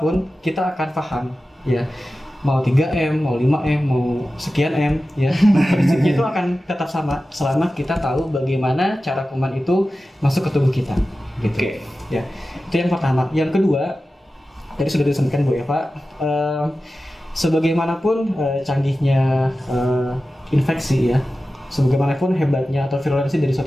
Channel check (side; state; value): both; normal; correlation 0.94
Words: kita akan paham, ya. Mau 3M, mau 5M, mau sekian M, ya. Prinsipnya itu akan tetap sama selama kita tahu bagaimana cara kuman itu masuk ke tubuh kita, gitu. Oke. Ya, itu yang pertama. Yang kedua, tadi sudah disampaikan Bu Eva, sebagaimanapun canggihnya infeksi ya, sebagaimanapun hebatnya atau virulensi dari